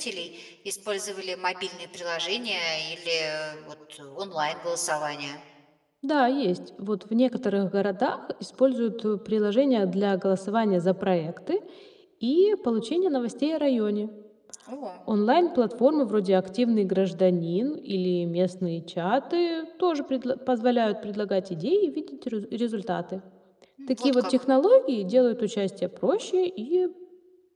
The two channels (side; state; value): both; identical; correlation 1.00